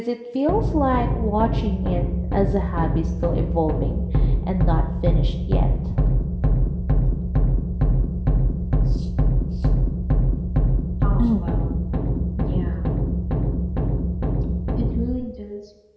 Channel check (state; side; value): identical; both; correlation 1.00